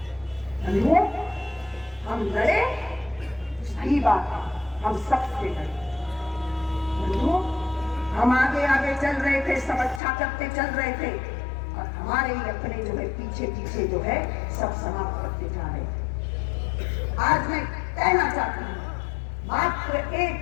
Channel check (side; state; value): right; drops out; at 10.0 s